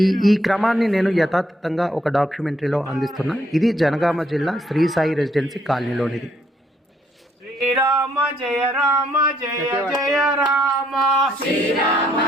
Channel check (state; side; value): normal; both; correlation 0.70